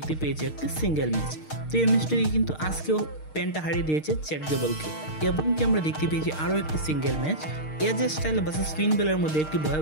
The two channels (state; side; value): late; right; 6.5 ms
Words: পেয়েছি একটি সিঙ্গেল ম্যাচ। তো এই ম্যাচটি কিন্তু আজকেও পেন্টা হারিয়ে দিয়েছে চ্যাট গেবলকে এবং কি আমরা দেখতে পেয়েছি আরও একটি সিঙ্গেল ম্যাচ এজে স্টাইল ভার্সেস ফিন বেলার মধ্যে একটি